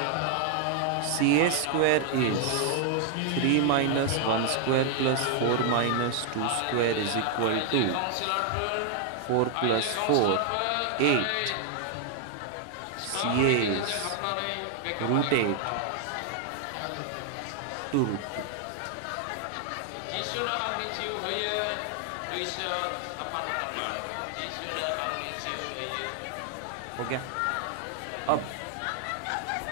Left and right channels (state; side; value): different; both; correlation 0.00